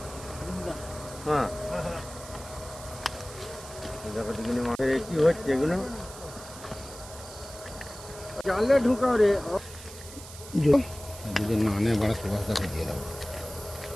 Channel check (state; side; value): noise; right; hiss, 15 dB below the sound